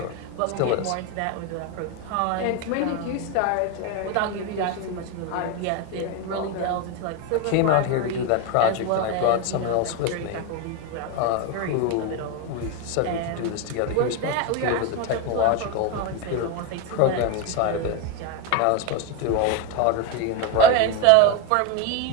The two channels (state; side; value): different; both; correlation 0.02